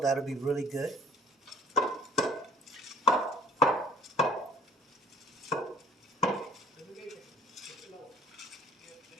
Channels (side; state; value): both; normal; correlation 0.52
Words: be really good.